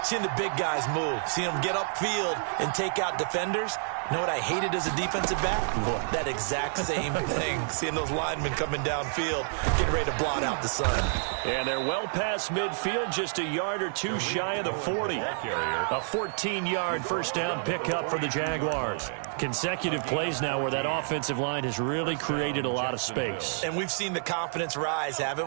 Seeing the big guys move. Seeing them get upfield and take out defenders. You know what I hated as a defensive back? That exact same thing. Seeing those linemen coming downfield, getting ready to blot out the sun. And they're well past midfield, just a yard or two shy of the 40. A 14-yard first down pickup for the Jaguars. Consecutive plays now where that offensive line has really created a lot of space. And we've seen the confidence rise,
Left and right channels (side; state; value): left; silent; digital silence